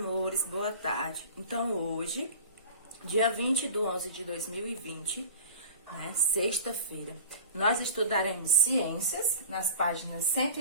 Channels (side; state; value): both; inverted; correlation -0.40